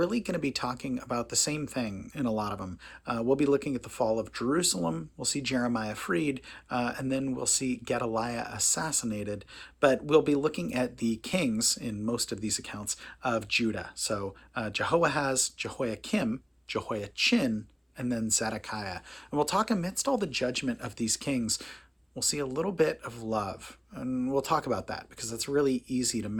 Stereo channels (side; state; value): both; identical; correlation 1.00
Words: going to be talking about the same thing in a lot of them. We'll be looking at the fall of Jerusalem, we'll see Jeremiah freed, and then we'll see Gedaliah assassinated. But we'll be looking at the kings in most of these accounts of Judah. So Jehoahaz, Jehoiakim, Jehoiachin, and then Zedekiah. And we'll talk amidst all the judgment of these kings. We'll see a little bit of love, and we'll talk about that because that's really easy to